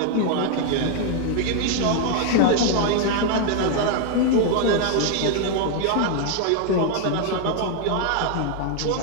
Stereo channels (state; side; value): different; both; correlation 0.00